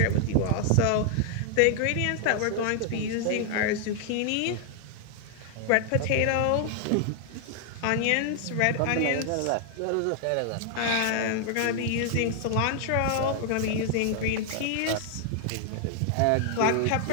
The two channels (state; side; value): different; both; correlation 0.00